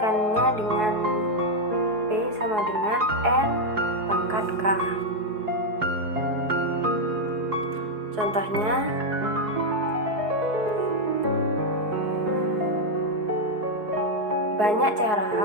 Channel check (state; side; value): late; left; 4.7 ms